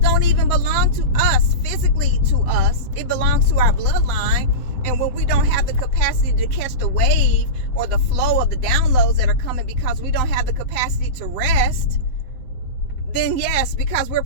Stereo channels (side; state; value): right; late; 7.8 ms